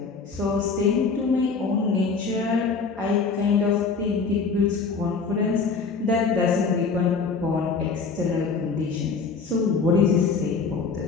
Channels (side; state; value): right; quieter; 4.9 dB